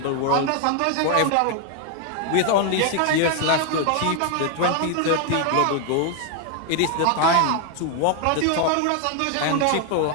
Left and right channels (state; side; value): different; both; correlation 0.01